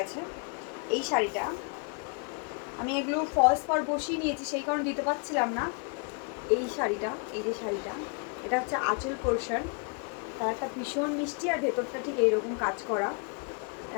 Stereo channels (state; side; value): quieter; right; 34.9 dB